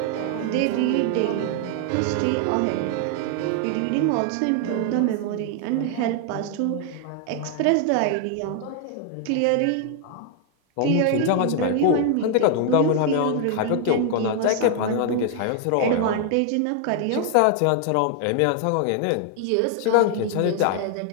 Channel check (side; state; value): both; different; correlation 0.00